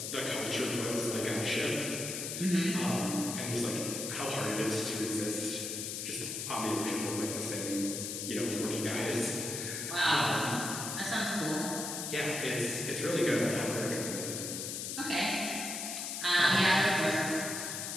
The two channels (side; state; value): left; noise; hiss, 4 dB below the sound